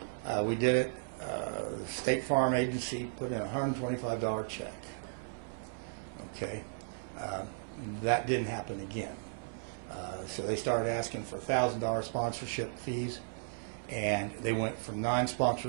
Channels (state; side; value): silent; left; digital silence